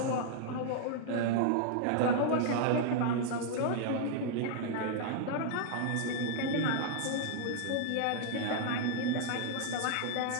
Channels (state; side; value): different; both; correlation -0.01